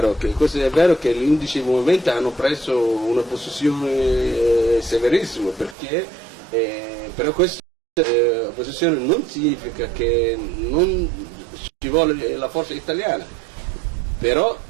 che gli 11 movimenti hanno preso una posizione severissima, però questa posizione non significa che non ci vuole la forza italiana, però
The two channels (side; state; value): left; drops out; at 5.8 s